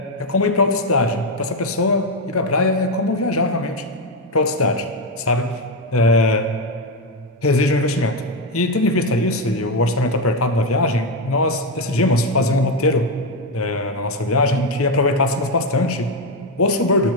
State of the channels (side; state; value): both; normal; correlation 0.07